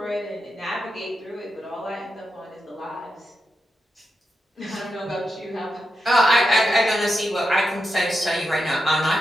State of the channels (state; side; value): normal; both; correlation 0.87